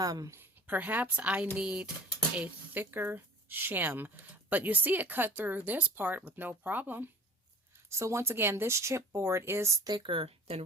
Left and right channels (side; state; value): both; normal; correlation 0.44